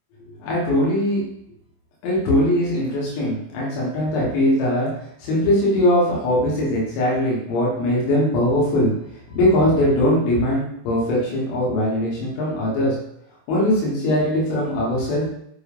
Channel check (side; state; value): right; late; 26 ms